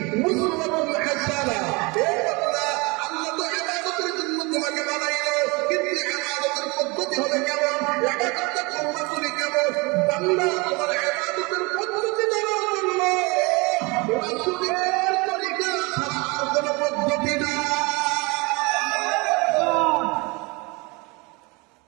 উসওয়াতুন হাসানাহ। হে বান্দা, আল্লাহ তো ইবাদতের জন্য তোমাকে বানাইলো, কিন্তু ইবাদতের পদ্ধতি হবে কেমন, ইবাদতটা তোমরা করি কেমন? বান্দা, তোমার ইবাদতের পদ্ধতি জানার জন্য রাসূলের তরিকা ছাড়া আর কোনো পদ্ধতি না।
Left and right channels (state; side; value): quieter; left; 26.8 dB